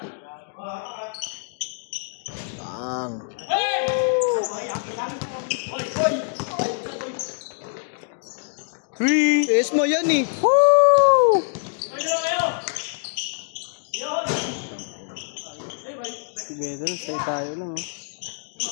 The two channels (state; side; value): silent; right; digital silence